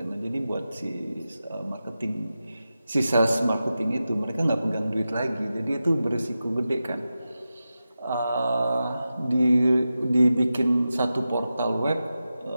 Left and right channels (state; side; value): inverted; both; correlation -0.92